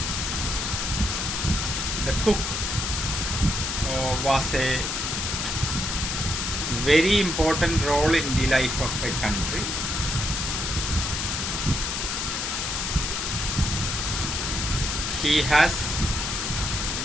the cook was a very important role in the life of a country. He has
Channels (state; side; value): noise; left; hiss, 1 dB below the sound